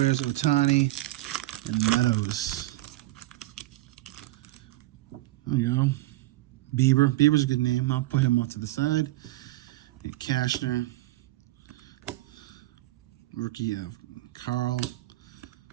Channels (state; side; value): quieter; left; 17.9 dB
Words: Otani, and Meadows. There you go. Bieber. Bieber's a good name. I'll put him off to the side. Cashner. Rookie of Carl.